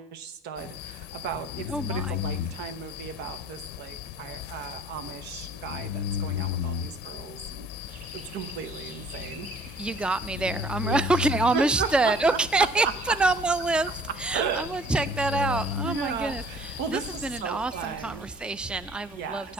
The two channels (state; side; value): normal; both; correlation 0.53